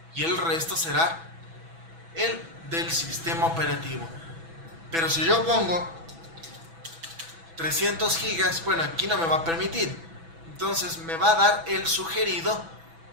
y el resto será el del sistema operativo. Pero si yo pongo 300 gigas, bueno, aquí no me va a permitir. Entonces me va a dar el sugerido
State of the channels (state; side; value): late; left; 6.1 ms